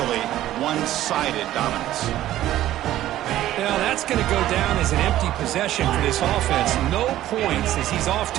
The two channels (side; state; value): left; quieter; 13.7 dB